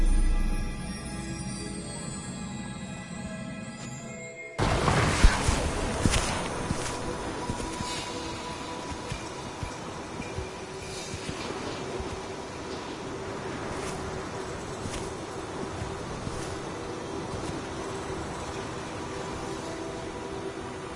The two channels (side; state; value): both; identical; correlation 1.00